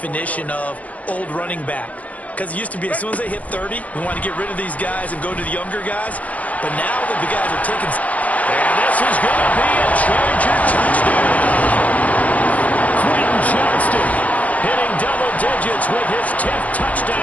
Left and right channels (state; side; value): late; right; 0.070 ms